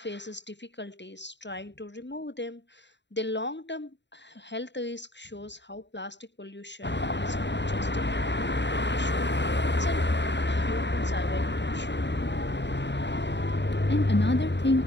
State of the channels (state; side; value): late; right; 0.52 ms